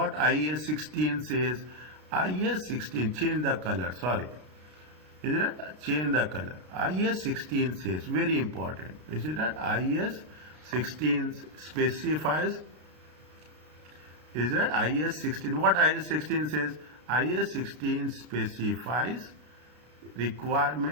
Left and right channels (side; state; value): left; late; 33 ms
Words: IS 16 says? IS 16, change the color, sorry. Is it that? Change the color. IS 16 says, very important. Is it that? IS 16 specifies. Is that IS 16? What IS 16 says? IS 16 specifies